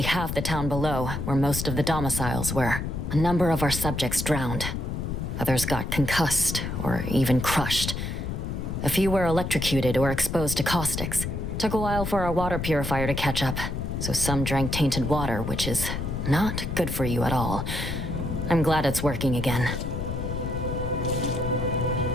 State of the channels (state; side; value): noise; left; rumble, 4 dB below the sound